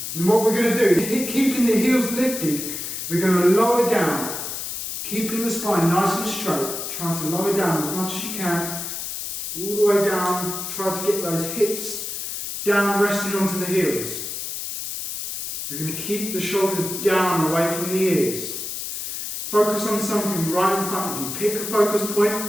And what we're going to do is, keeping the heels lifted, we're going to lower down, keeping the spine nice and straight, trying to lower down as much as you can, all the way down, try to get those hips down, resting onto the heels. We're going to keep the shoulders down, away from the ears. Focus on something right in front of you. Pick a focus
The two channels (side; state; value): left; noise; hiss, 5 dB below the sound